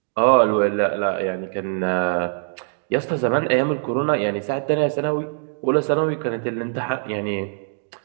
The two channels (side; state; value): left; silent; digital silence